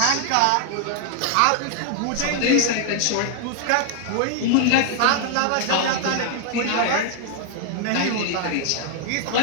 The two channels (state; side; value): different; both; correlation 0.00